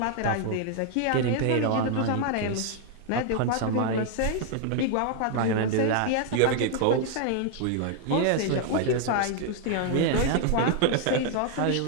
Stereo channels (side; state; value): both; different; correlation 0.00